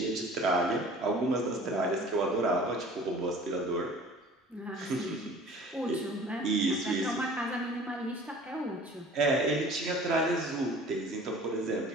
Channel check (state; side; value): normal; both; correlation 0.46